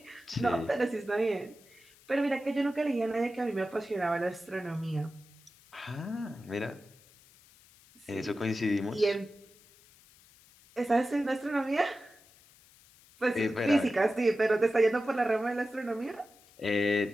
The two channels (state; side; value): noise; left; hiss, 27 dB below the sound